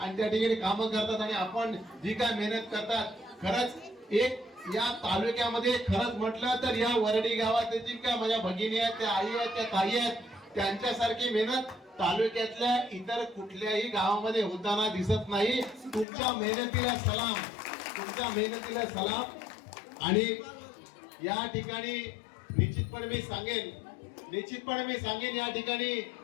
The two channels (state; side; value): drops out; right; at 16.1 s